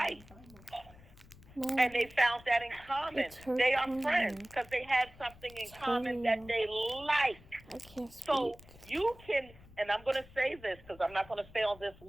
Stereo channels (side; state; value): left; noise; rumble, 22 dB below the sound